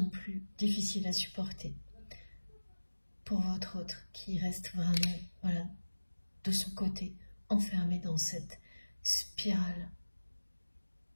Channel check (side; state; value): both; inverted; correlation -1.00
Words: plus difficile à supporter pour votre autre qui reste vraiment, voilà, de son côté, enfermé dans cette spirale